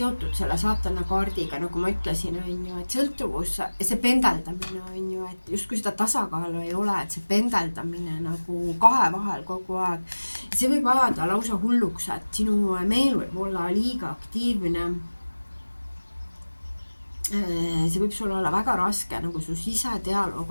selle saatana kaardiga, nagu ma ütlesin, on ju, et sõltuvus ja see pendeldamine on ju, et justkui seda tasakaalu ei ole, et see pendeldamine nagu kahe vahel kogu aeg. See võib ajada lausa hulluks, et sinu meel võib olla liiga aktiivne. See võib sul olla väga raske, nagu su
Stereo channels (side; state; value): both; inverted; correlation -1.00